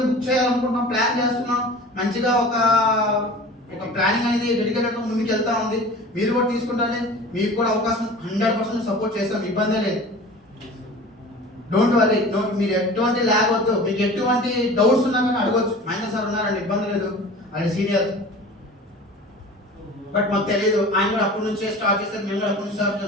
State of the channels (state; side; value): normal; both; correlation 0.40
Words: బుక్ చేయాలనుకుంటున్నాం, ప్లాన్ చేస్తున్నాం. మంచిగా ఒక ప్లానింగ్ అనేది డెడికేటెడ్గా ముందుకు వెళ్తా ఉంది. మీరు కూడా తీసుకుంటానే, మీకు కూడా అవకాశం 100% సపోర్ట్ చేస్తాం, ఇబ్బందే లేదు. డోంట్ వరీ, మీరు ఎటువంటి ల్యాగ్ వద్దు. మీకు ఎటువంటి డౌట్స్ ఉన్నా కానీ అడగొచ్చు. మహేంద్ర సార్ ఉన్నారండి, ఇబ్బంది లేదు, ఆయన సీనియర్. బట్ మాకు తెలియదు, ఆయన కూడా అప్పటి నుంచే స్టార్ట్ చేస్తారు, మేము కూడా అప్పటి నుంచి